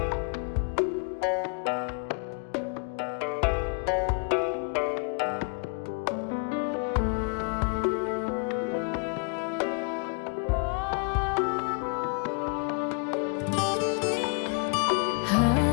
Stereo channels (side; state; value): right; quieter; 36.2 dB